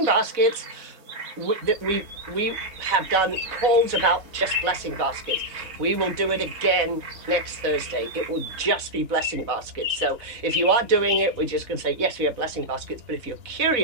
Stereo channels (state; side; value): late; left; 4.0 ms